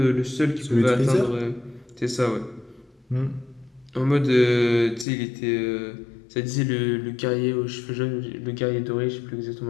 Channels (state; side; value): drops out; right; at 5.1 s